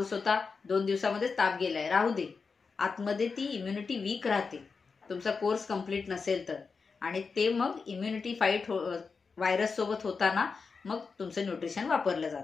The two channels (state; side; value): quieter; right; 4.9 dB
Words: होता, 2 दिवसामध्येच ताप गेलाय, राहू दे. आतमध्ये ती इम्युनिटी वीक राहते तुमचा कोर्स कंप्लीट नसेल तर. आणि ते मग इम्युनिटी फाईट व्हायरस सोबत होताना मग तुमचं न्यूट्रिशन वापरलं